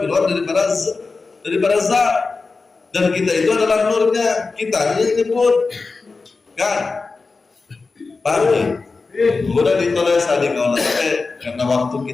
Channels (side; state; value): right; quieter; 4.1 dB